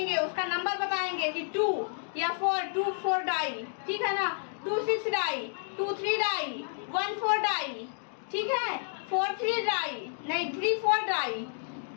उसका नंबर बताएंगे कि 2 या 4 डाई, ठीक है ना। 2 6 डाई, 2 3 डाई, 1 4 डाई, ठीक है। 4 3 डाई, नहीं 3 4 डाई,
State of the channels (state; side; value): silent; right; digital silence